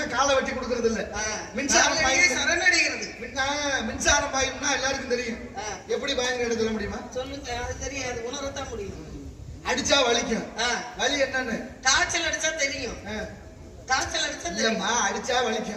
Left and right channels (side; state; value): both; identical; correlation 1.00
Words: காலை வெட்டி கொடுக்கறது இல்ல. மின்சாரம் சரணடைகிறது. மின்சாரம் பாயும்னா எல்லாருக்கும் தெரியும். எப்படி பாயுங்க சொல்ல முடியுமா? சொல்லுங்க. அது தெரியாது, உணரத்தான் முடியும். அடிச்சா வலிக்கும். வலி என்னன்னு காய்ச்சல் அடிச்சா தெரியும். காய்ச்சல் அடிச்சா தெரியுமா? அடிச்சா